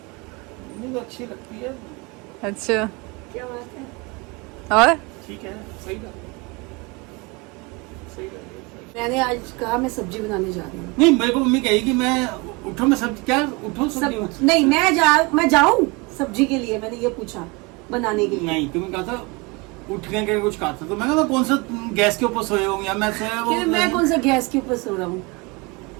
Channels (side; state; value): left; quieter; 26.7 dB